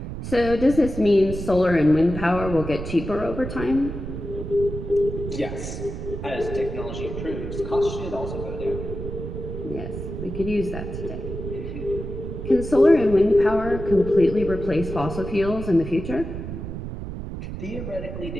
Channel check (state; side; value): noise; right; rumble, 7 dB below the sound